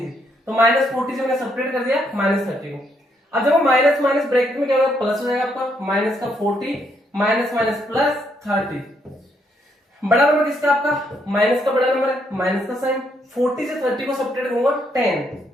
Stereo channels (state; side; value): normal; both; correlation 0.74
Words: से, तो -40 से मैंने सब्ट्रैक्ट कर दिया -30 को। अब देखो माइनस माइनस ब्रैकेट में क्या होगा, प्लस हो जाएगा आपका, माइनस का 40 माइनस माइनस प्लस 30। बड़ा नंबर किसका आपका, माइनस का बड़ा नंबर है, माइनस का साइन। 40 से 30 को सब्ट्रैक्ट करूंगा 10,